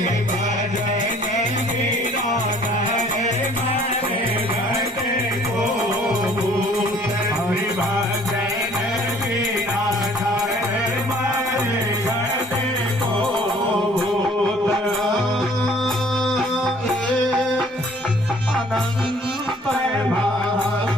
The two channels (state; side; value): normal; both; correlation 0.56